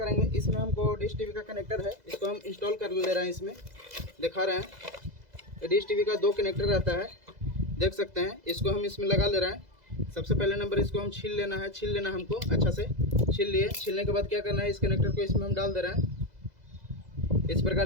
इसमें हमको डिश टीवी का कनेक्टर है, इसको हम इंस्टॉल कर ले रहे हैं। इसमें दिखा रहे हैं डिश टीवी का 2 कनेक्टर रहता है, देख सकते हैं। इसको हम इसमें लगा ले रहे हैं। सबसे पहले नंबर इसको हम छील लेना है, छील लेना हमको अच्छा से। छील लिए। छीलने के बाद क्या करना है, इस कनेक्टर को इसमें हम डाल दे रहे हैं। इस प्रकार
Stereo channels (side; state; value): left; late; 2.0 ms